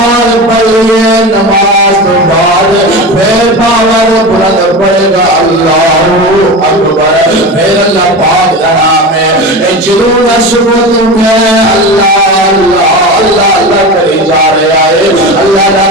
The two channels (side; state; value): both; normal; correlation 0.26